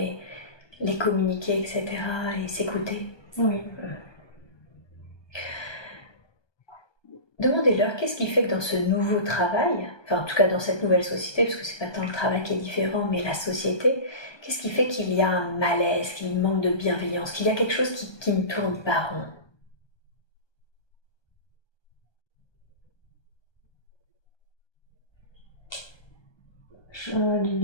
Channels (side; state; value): right; late; 1.2 ms